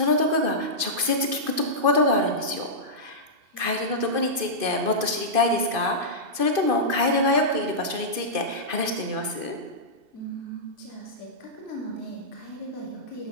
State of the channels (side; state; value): left; late; 2.5 ms